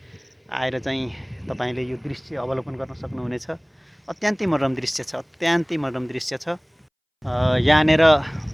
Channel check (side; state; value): both; identical; correlation 1.00